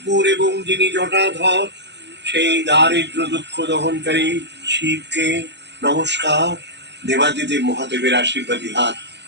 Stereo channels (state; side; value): late; left; 0.50 ms